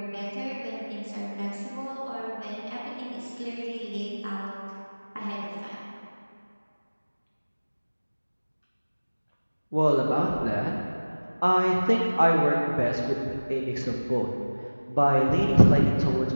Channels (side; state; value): both; inverted; correlation -1.00